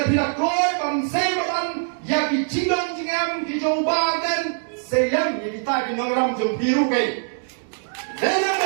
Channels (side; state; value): left; silent; digital silence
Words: pila koy pam seibadan ya ki chingan jingam ki jobaden Selam yang kita dinongram jom biru kay.